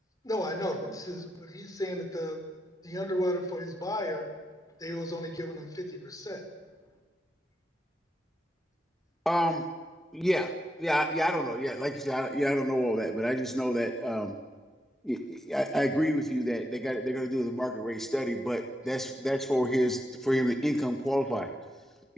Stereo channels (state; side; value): normal; both; correlation 0.83